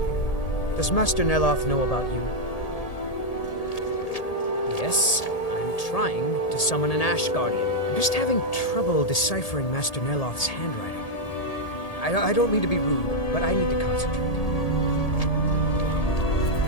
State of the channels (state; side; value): late; right; 1.8 ms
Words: Does Master Neloth know about you? Yes. Trying to summon an Ash Guardian. I'm just having trouble deciphering Master Neloth's handwriting. I don't mean to be rude, but I need to concentrate.